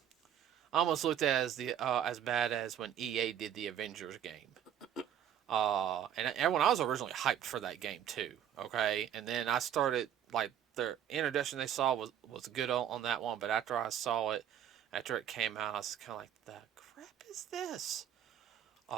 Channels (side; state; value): left; quieter; 10.0 dB